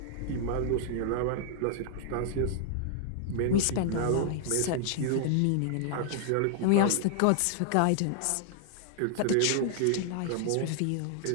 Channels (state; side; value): different; both; correlation -0.01